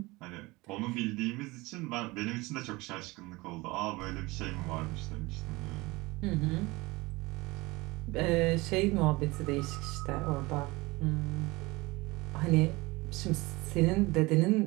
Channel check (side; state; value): left; quieter; 22.4 dB